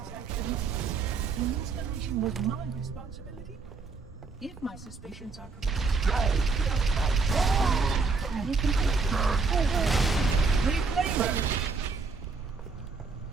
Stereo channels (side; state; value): left; quieter; 4.5 dB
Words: The installation was my responsibility. If my suspicions are correct. Reclaimer!